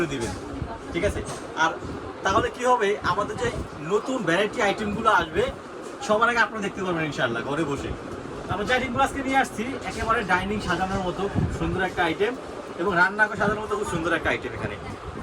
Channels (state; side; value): identical; both; correlation 1.00